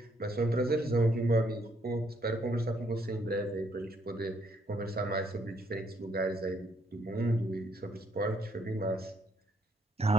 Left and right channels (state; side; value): normal; both; correlation 0.71